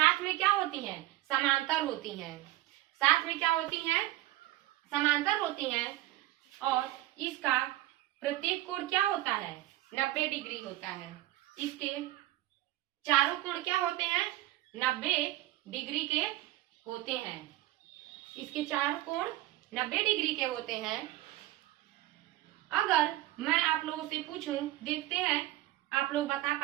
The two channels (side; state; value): left; quieter; 16.2 dB